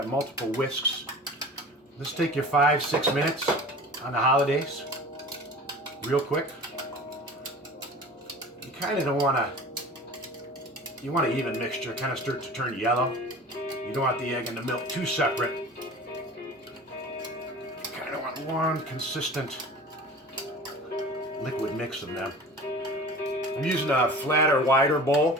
multiple whisks. This take you 5-6 minutes on the holidays. Real quick. You kind of don't want to... You want an even mixture. Kind of start to turn yellow. You don't want the egg and the milk too separate. One consistent liquid mix of them. I'm using a flatter, wider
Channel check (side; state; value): both; normal; correlation 0.39